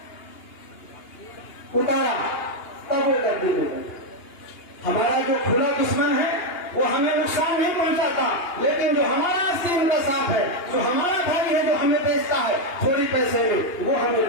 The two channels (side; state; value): right; late; 2.9 ms